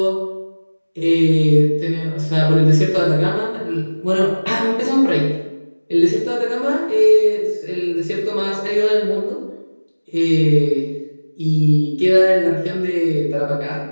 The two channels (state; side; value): inverted; both; correlation -1.00